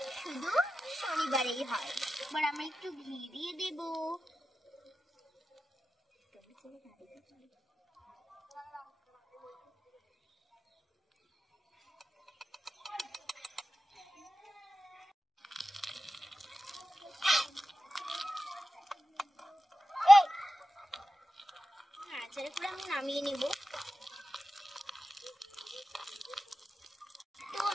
শুধু শনিবারেই হয়। এবার আমরা একটু ঘি দিয়ে দেব। নাড়াচাড়া করে আমি নামিয়ে নেব। তো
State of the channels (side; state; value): both; normal; correlation 0.93